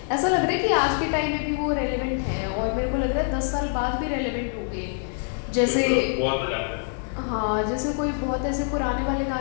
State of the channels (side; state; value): right; silent; 62 dB below the other